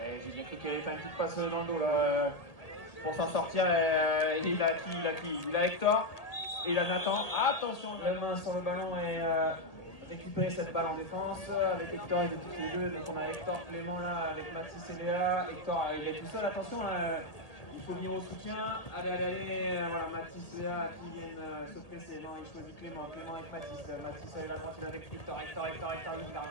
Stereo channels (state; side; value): late; right; 1.8 ms